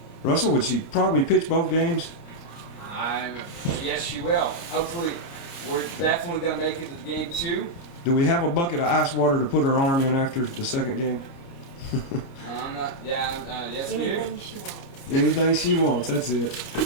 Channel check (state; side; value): late; right; 29 ms